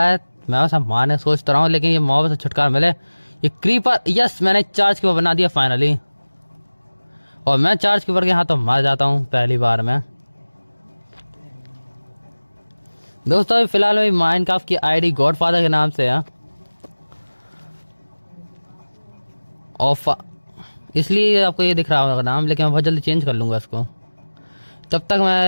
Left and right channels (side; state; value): both; inverted; correlation -1.00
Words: है, मैं सब मारने सोचता रहा हूँ लेकिन ये मॉब से छुटकारा मिले। ये क्रीपर, यस मैंने चार्ज कीपर बना दिया फाइनली। और मैं चार्ज कीपर के हाथों मर जाता हूँ पहली बार में। दोस्तों अभी फिलहाल मेरी माइनक्राफ्ट की आईडी गॉडफादर के नाम से है और इसलिए आपको ये दिख रहा होगा नाम, लेकिन मैं बहुत जल्दी चेंज कर लूँगा इसको। तब तक